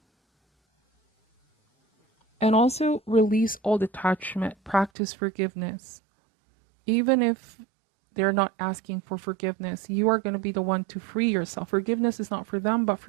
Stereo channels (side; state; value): left; drops out; at 4.9 s